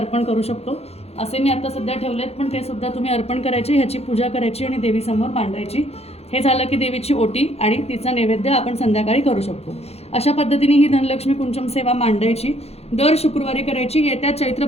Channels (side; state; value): right; late; 0.30 ms